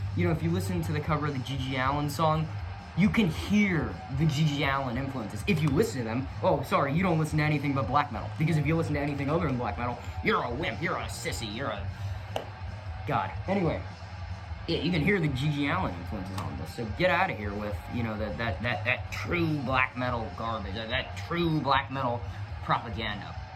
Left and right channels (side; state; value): both; identical; correlation 1.00